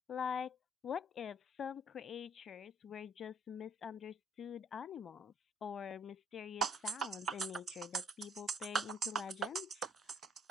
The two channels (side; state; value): both; normal; correlation 0.62